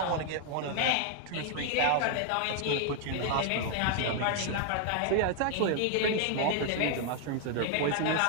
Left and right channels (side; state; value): both; different; correlation 0.00